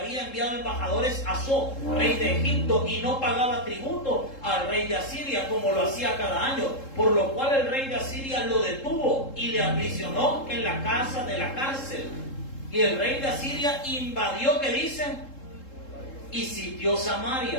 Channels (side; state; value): right; late; 3.7 ms